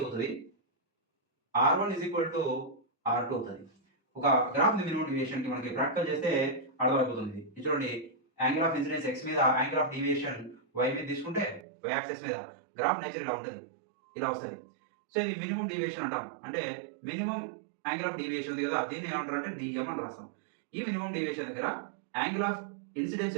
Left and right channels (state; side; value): drops out; left; at 11.7 s